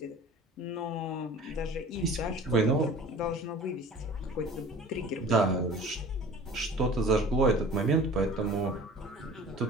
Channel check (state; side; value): normal; both; correlation 0.44